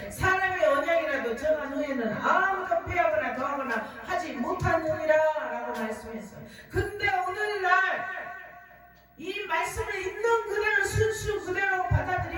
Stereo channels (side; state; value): both; identical; correlation 1.00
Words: 사람의 언약이라도 정한 후에는 아무도 빼앗거나 더하거나 하지 못하느니라 라고 말씀했어요. 근데 오늘날 이 말씀을 있는 그대로 순수 그대로